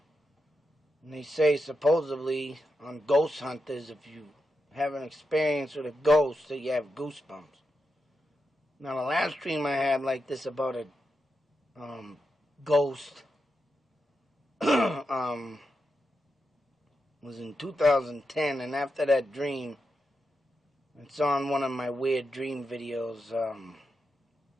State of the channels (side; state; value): both; normal; correlation 0.87